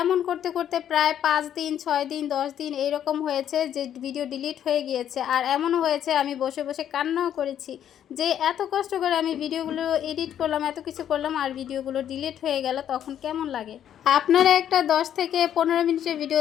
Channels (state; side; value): quieter; right; 10.1 dB